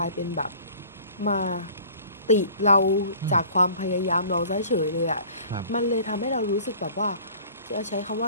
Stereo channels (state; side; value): inverted; both; correlation -0.47